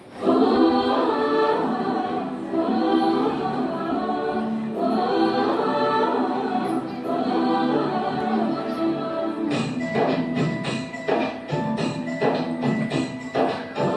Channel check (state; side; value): identical; both; correlation 1.00